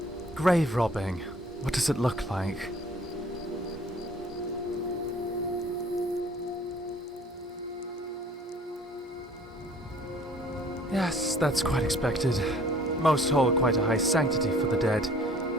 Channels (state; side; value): normal; both; correlation 0.53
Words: Grave robbing. What does it look like? Yes, that's quite expected. Most hold quite a high sanctity for the dead,